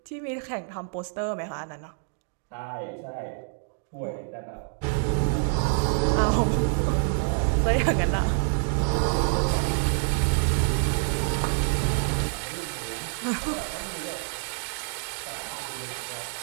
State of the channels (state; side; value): silent; left; 60 dB below the other